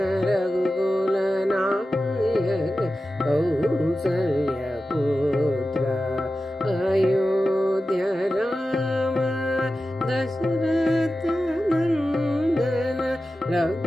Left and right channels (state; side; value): normal; both; correlation 0.93